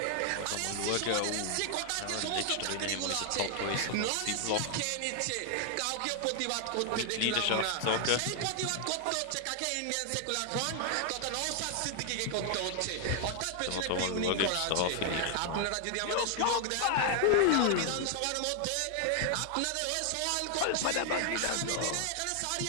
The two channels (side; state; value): both; different; correlation 0.00